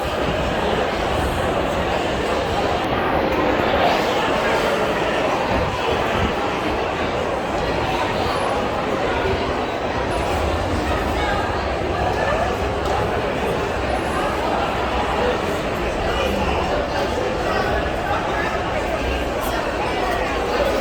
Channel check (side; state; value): both; identical; correlation 1.00